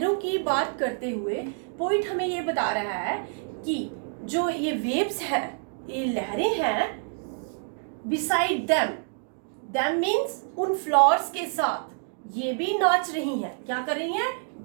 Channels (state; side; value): silent; left; 59 dB below the other